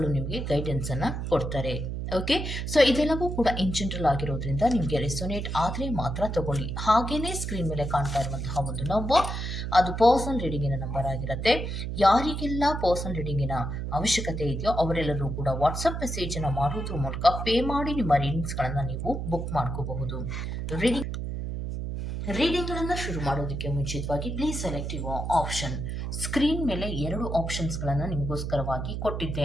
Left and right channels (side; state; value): right; noise; hum, 4 dB below the sound